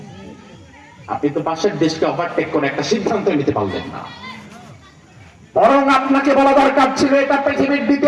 আপনি তো পাশের দেশকে ওভারটেক করে একটা সিদ্ধান্ত নিতে পারলেন না। বরং আপনাকে বলা দরকার ছিল এটা পৃথিবীর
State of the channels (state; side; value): identical; both; correlation 1.00